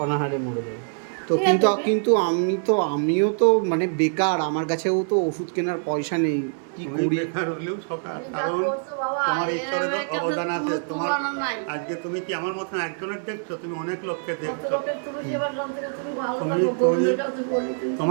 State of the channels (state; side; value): silent; left; 58 dB below the other